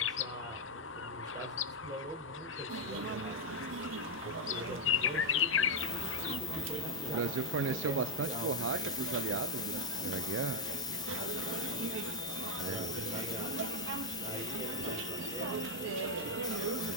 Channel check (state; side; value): normal; both; correlation 0.01